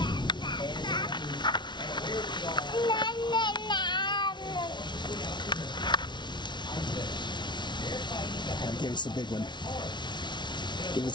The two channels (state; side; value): late; right; 0.22 ms